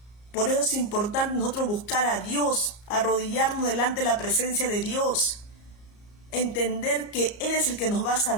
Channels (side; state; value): right; late; 34 ms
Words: Por eso es importante nosotros buscar a Dios, arrodillarnos delante de la presencia de Dios, entender que Él es el que nos va a